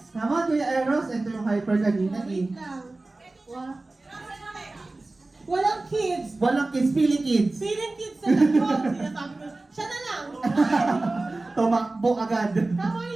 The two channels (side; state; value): left; quieter; 3.1 dB